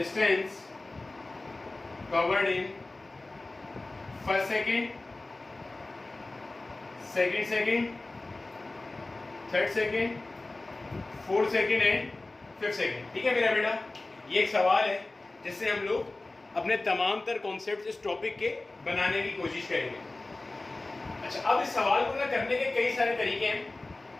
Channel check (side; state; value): right; quieter; 3.0 dB